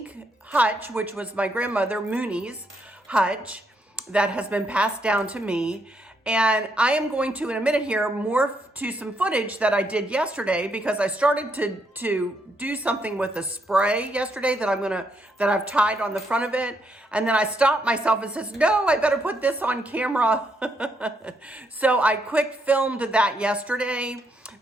Hutch, which was my grandmother Mooney's Hutch that has been passed down to me. And I am going to, in a minute here, morph to some footage that I did yesterday because I started to do something with a spray yesterday that I've tied on the front of it. And then I stopped myself and says, no, I better put this on camera. So I quick filmed that yesterday.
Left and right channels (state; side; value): normal; both; correlation 0.76